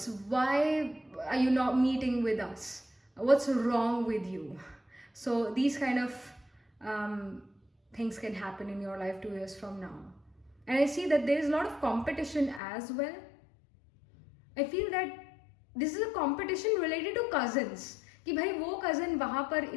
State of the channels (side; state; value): right; drops out; at 12.6 s